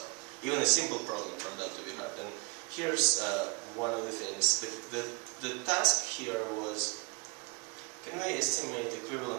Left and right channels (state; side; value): quieter; left; 26.7 dB